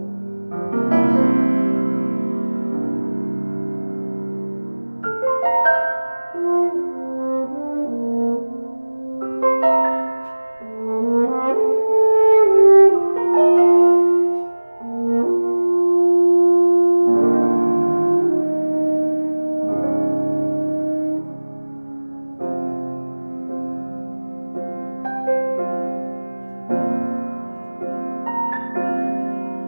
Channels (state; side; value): inverted; both; correlation -1.00